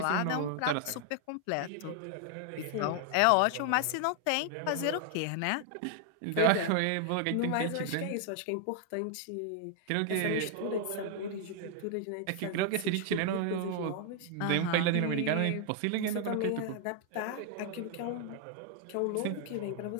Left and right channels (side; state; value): both; different; correlation 0.00